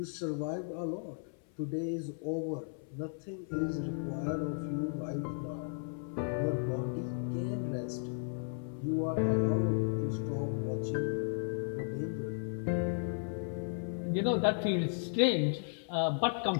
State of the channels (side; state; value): right; silent; 55 dB below the other